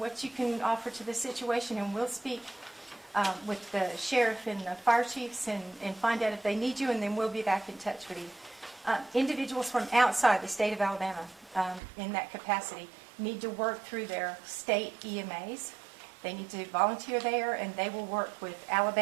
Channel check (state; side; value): drops out; left; at 11.8 s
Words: you can offer to the situation, and we'll speak with the sheriff and the fire chiefs and find out if they need you, and then we'll be back in touch with you. Individuals from outside the state of Alabama in that capacity need to work through their state EMAs. They need to volunteer there, and they will work with